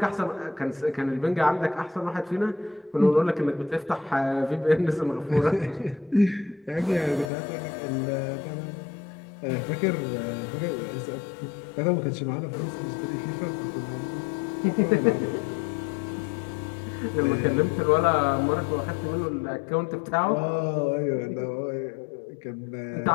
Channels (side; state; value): right; drops out; at 7.3 s